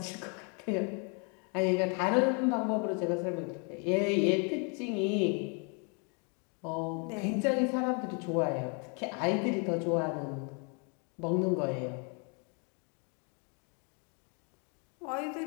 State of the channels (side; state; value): right; quieter; 36.6 dB